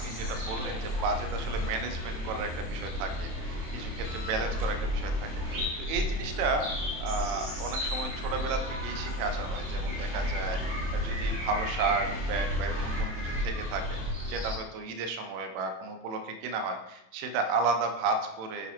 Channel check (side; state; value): left; late; 27 ms